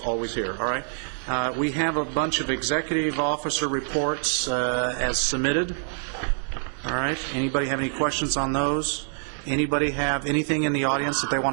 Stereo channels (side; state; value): left; silent; digital silence